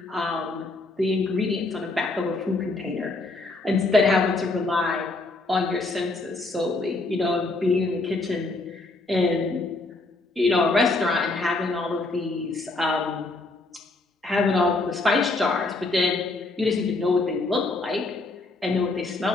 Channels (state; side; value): quieter; right; 3.2 dB